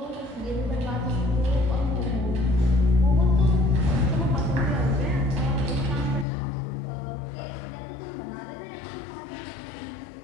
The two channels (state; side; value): drops out; right; at 6.2 s